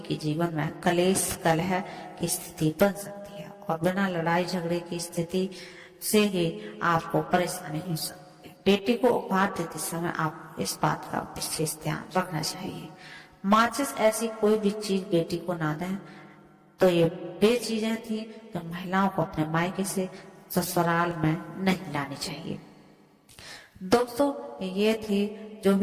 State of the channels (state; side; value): identical; both; correlation 1.00